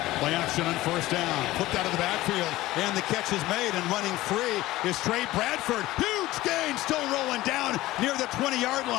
Play action on first down. Flipped out of the backfield, and the catch is made, and running free is Trey Bradford. Huge gain, still rolling down near the 20-yard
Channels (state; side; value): quieter; right; 17.1 dB